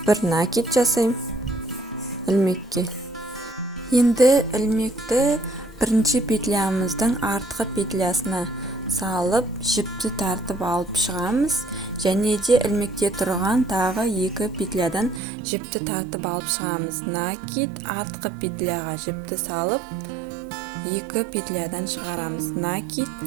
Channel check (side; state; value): left; drops out; at 15.2 s